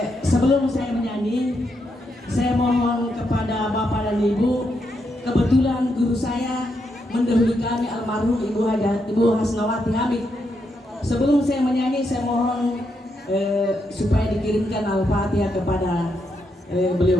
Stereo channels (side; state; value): both; normal; correlation 0.81